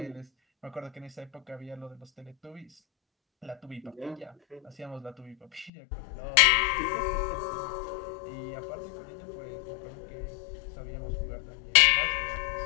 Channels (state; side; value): drops out; right; at 5.7 s